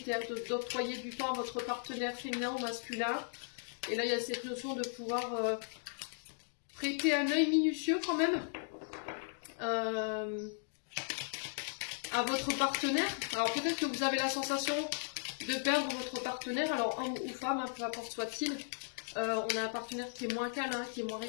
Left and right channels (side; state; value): right; silent; digital silence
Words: d'octroyer du temps à votre partenaire féminin ou masculin. Et là, il y a cette notion de pouvoir prêter un œil minutieux quand même à votre partenaire. Alors peut-être que vous avez la sensation de perdre votre partenaire, alors homme ou femme, hein, peu importe soit-il. On a un partenaire qui est moins câlin, qui est moins